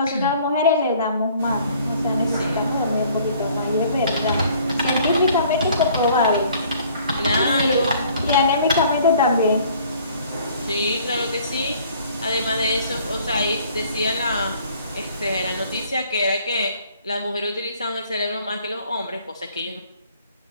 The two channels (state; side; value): inverted; both; correlation -0.57